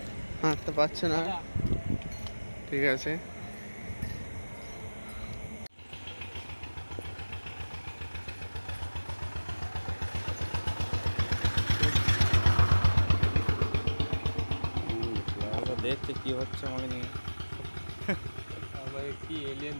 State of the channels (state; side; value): inverted; both; correlation -1.00